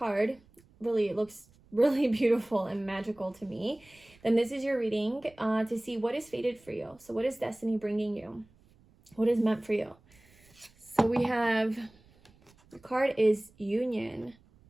really, it looks really beautiful and magical to me, then this is your reading to see what is fated for you. So what is destiny bringing you? What is meant for you? So we have, the card is Union.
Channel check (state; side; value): noise; right; rumble, 29 dB below the sound